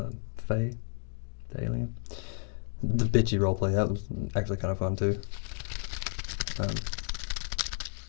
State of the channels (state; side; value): silent; right; 56 dB below the other